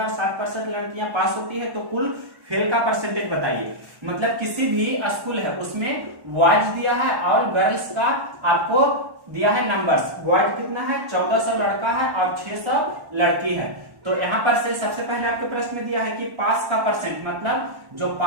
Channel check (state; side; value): late; left; 1.1 ms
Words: और 60% लड़कियां पास होती है, तो कुल फेल का परसेंटेज बताइए। मतलब किसी भी स्कूल है उसमें बॉयज दिया है और गर्ल्स का आपको दिया है नंबर्स। बॉयज कितना है? 1400 लड़का है और 600 लड़की है। तो यहाँ पर से सबसे पहले आपके प्रश्न में दिया है कि पास का परसेंट, मतलब जो